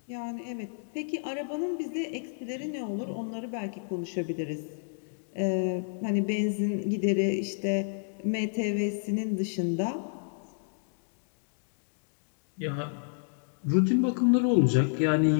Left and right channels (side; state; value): right; silent; digital silence